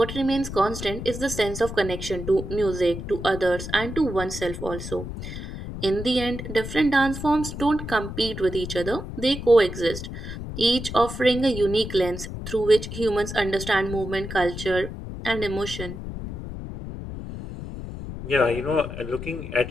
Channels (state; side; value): noise; left; rumble, 8 dB below the sound